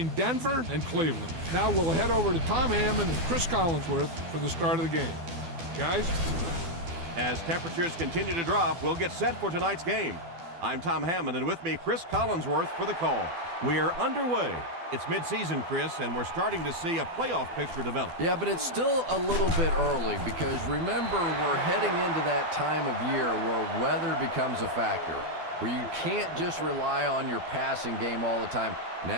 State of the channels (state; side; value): late; left; 12 ms